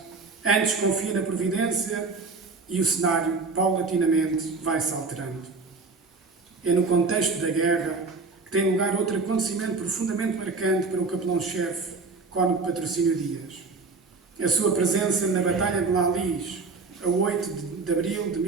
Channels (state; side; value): quieter; left; 4.1 dB